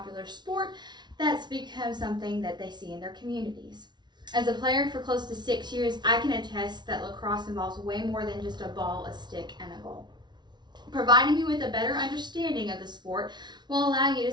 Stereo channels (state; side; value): late; left; 0.21 ms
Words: sport that's become something that they see in their communities. As a player for close to 6 years, I can attest that lacrosse involves way more than just a ball, a stick, and a goal. Providing you with a better understanding of the sport will allow you to